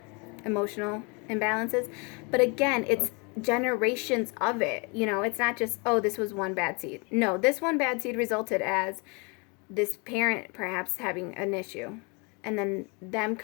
emotional imbalances, but again, it's generations of it. It's not just, oh, this was one bad seed. No, this one bad seed resulted as this parent perhaps having an issue, and then them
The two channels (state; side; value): quieter; right; 31.4 dB